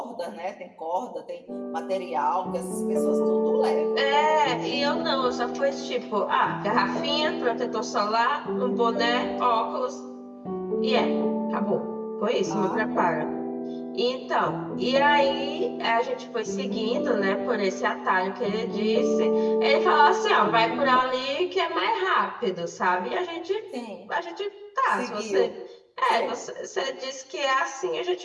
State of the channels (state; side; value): identical; both; correlation 1.00